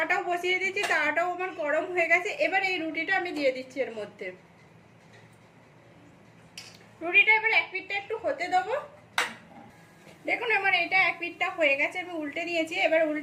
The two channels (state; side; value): identical; both; correlation 1.00